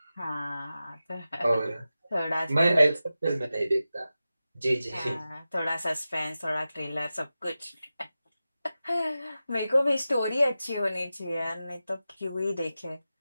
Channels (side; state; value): both; inverted; correlation -0.93